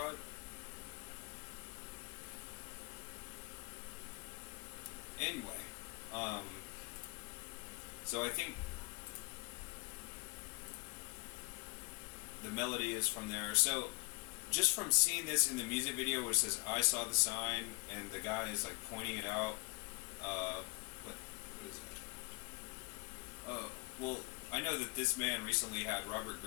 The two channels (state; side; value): quieter; right; 32.1 dB